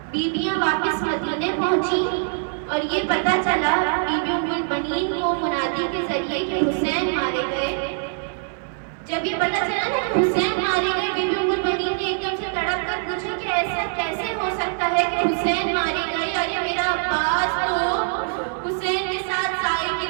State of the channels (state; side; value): silent; left; 60 dB below the other